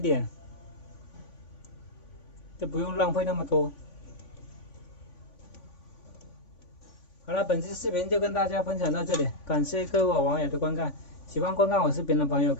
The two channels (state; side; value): late; right; 3.5 ms